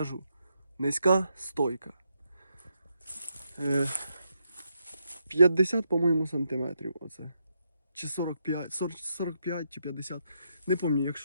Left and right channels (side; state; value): both; inverted; correlation -0.80